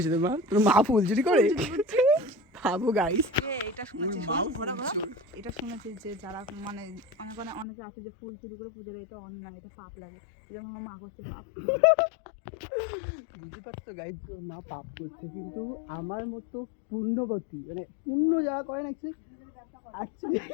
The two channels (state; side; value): drops out; right; at 7.7 s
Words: তোমার? তোর মা ফুল চুরি করে? ভাবো গাইস, এটা শুনেছি যে যারা মানে অনেকে আছে যে ফুল চুরি করে পুজো দেয়, এটা অন্যায়, এটা পাপ লাগে। যেমন আমার মা করছে পাপ। বুঝতে পারছো গাইস, ওর মা পাপ করছে, কিন্তু আমার মতো পুণ্যবতী, মানে পুণ্য যারা করেন অ্যাকচুয়ালি